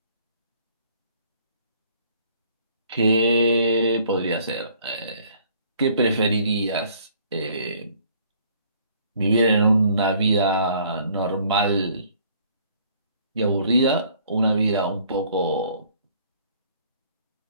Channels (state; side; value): inverted; both; correlation -0.59